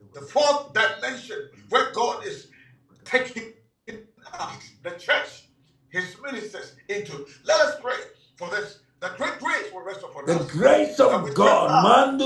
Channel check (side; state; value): both; identical; correlation 1.00